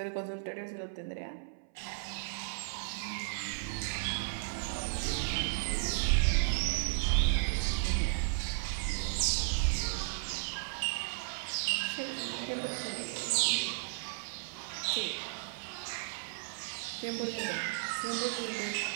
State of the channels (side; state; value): left; silent; 55 dB below the other